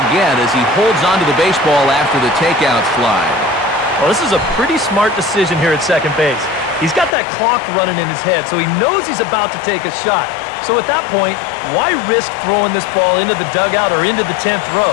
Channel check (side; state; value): right; drops out; at 7.1 s